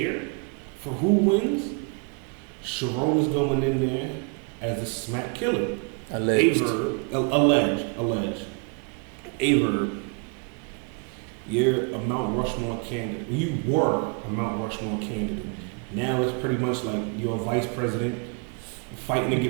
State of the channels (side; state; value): left; quieter; 36.7 dB